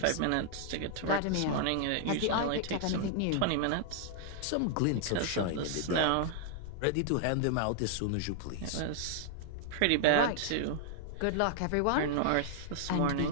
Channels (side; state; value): both; different; correlation -0.01